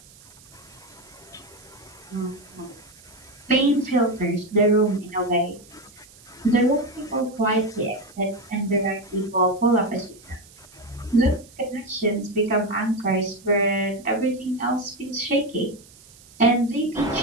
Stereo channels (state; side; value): noise; right; hiss, 24 dB below the sound